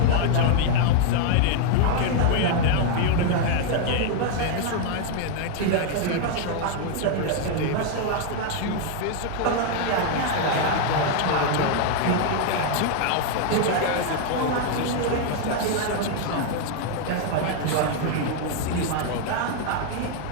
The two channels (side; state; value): both; different; correlation 0.00